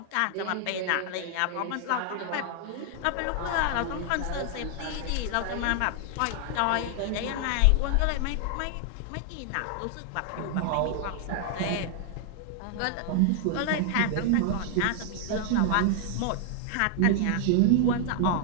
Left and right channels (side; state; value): both; different; correlation 0.00